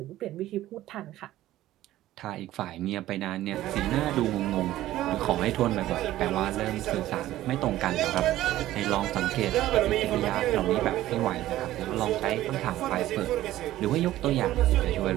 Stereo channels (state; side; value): quieter; left; 14.6 dB